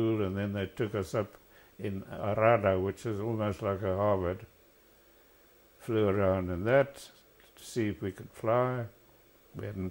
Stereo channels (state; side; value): identical; both; correlation 1.00